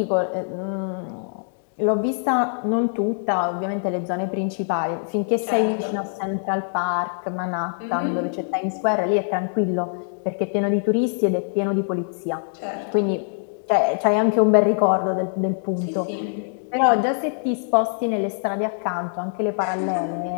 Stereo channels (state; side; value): silent; right; digital silence